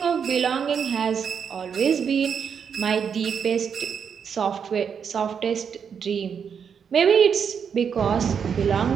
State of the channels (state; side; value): quieter; left; 7.0 dB